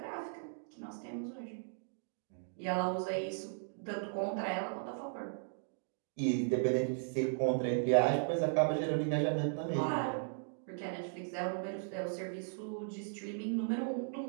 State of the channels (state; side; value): silent; left; digital silence